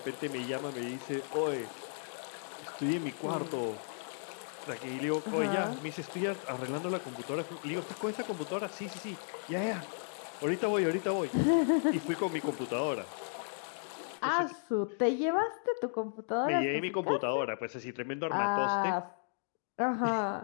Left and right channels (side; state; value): right; silent; digital silence